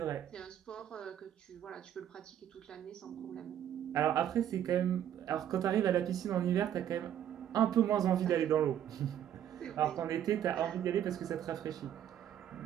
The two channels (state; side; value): quieter; left; 10.4 dB